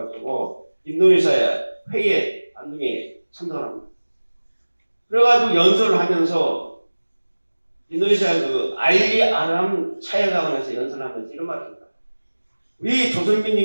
인도네시아 회의에 안동에 참석을 합니다. 그래가지고 연설을 하면서 인도네시아 그 알리 아람 차해가원에서 연설을 하면서 이런 말을 합니다. 우리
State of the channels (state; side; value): inverted; both; correlation -1.00